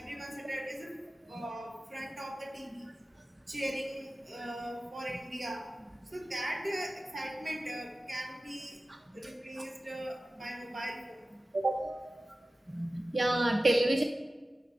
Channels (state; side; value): normal; both; correlation 0.95